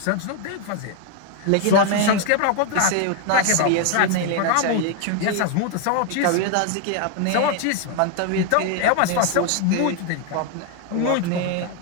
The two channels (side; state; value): both; different; correlation 0.00